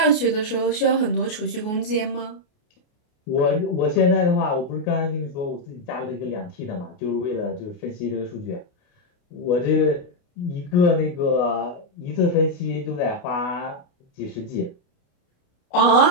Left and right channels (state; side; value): late; right; 28 ms